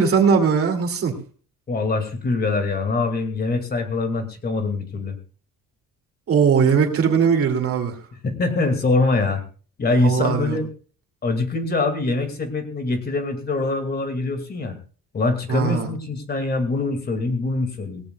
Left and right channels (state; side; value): normal; both; correlation 0.44